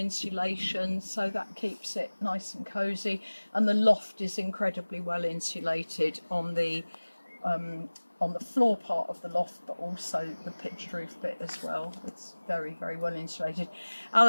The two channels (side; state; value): both; inverted; correlation -1.00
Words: so that keeps it nice and cosy. And the loft is incredibly well insulated on the floor part of the loft, but also the pitched roof bit as well. It's very, very well insulated.